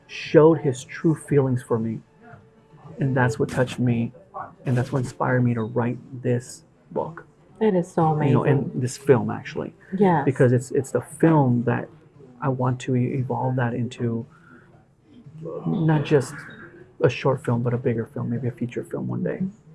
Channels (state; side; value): identical; both; correlation 1.00